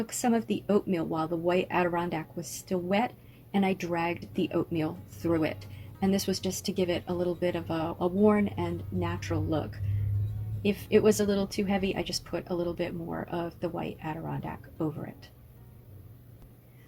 some of the oatmeal while the white adirondack was still wet, and I dragged the oatmeal through it. And this was just to give it a little bit of a worn and natural look. If it was a little too heavy, I just put a little bit more of the white adirondack over it.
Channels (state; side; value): identical; both; correlation 1.00